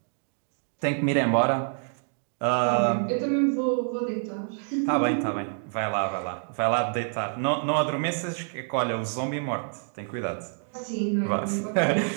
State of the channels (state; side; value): silent; left; 60 dB below the other